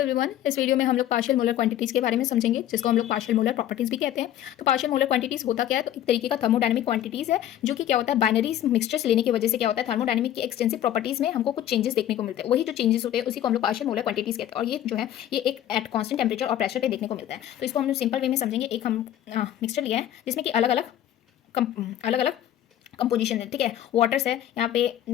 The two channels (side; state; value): right; quieter; 11.8 dB